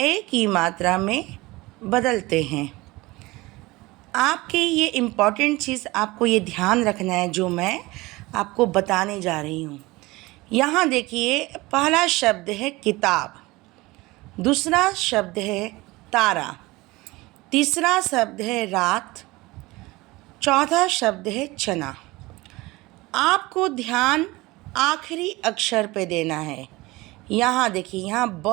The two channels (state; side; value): quieter; left; 21.3 dB